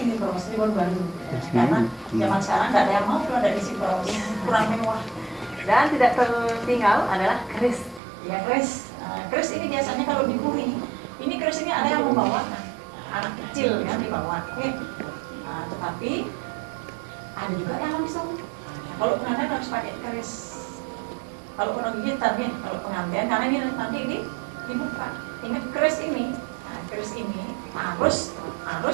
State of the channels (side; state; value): left; drops out; at 8.0 s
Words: bros, ini baru. Karena zaman sekarang nggak ada yang mau kalau ada isi bros, kurang mewah. Dan tidak tertinggal adalah keris. Ya keris, keris ini biasanya kalau dipuri, ini keris ini ada yang membawa anak kecil kan dibawa. Oke. Tetapi ada juga yang langsung. Kalau pengantin harus pakai keris. Kalau orang gitar nih, kalau pengantin karena ini nanti ini dibuka. Ingat keris ini, keris ini harus